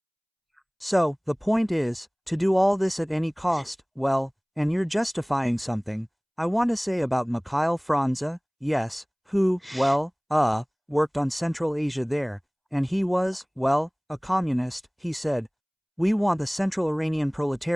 So, the point is, to do all this at any cost, well, and you're justifying something, I want to say about Mikhail Franza, yes, who, well, worked on Central Asia there, and he was, well, a communist, he said, we want the Central Iranian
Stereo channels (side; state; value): both; identical; correlation 1.00